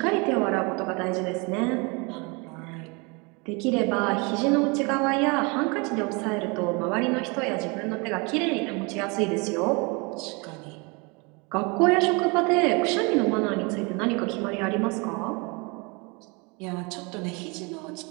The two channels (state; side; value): quieter; left; 29.5 dB